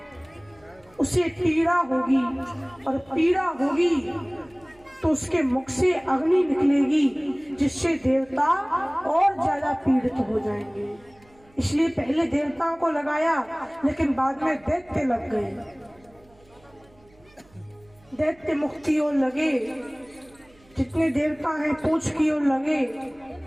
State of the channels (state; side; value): noise; right; hum, 29 dB below the sound